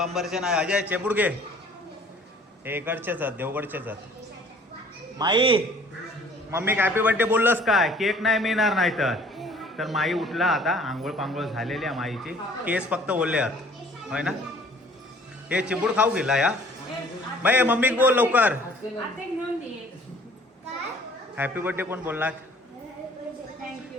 नाही. अजय चिबूड घे. हे इकडचेच आहेत देवगडचेच आहेत. माई मम्मी हॅपी बर्थडे बोललंस काय? केक नाही मिळणार नाही तर माई उठला आता. आंघोळ पांघोळ झालेली आहे माईची. केस फक्त ओले आहेत होय ना. हे चिबूड खाऊ गेला या बाई. मम्मी बोल लवकर. हॅपी बर्थडे कोण बोलला?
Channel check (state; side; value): normal; both; correlation 0.54